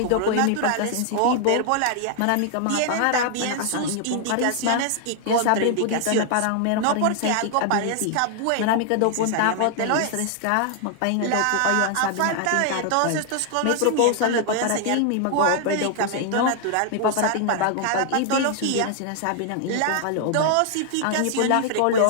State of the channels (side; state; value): both; different; correlation 0.00